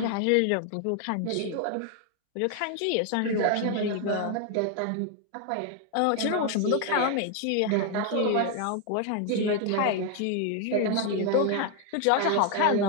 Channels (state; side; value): different; both; correlation 0.01